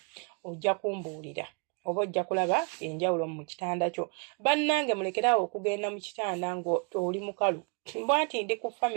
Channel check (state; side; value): quieter; left; 35.9 dB